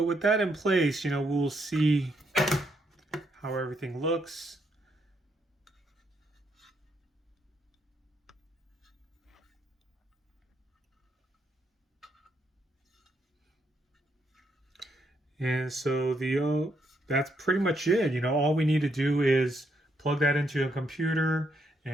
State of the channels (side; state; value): both; normal; correlation 0.76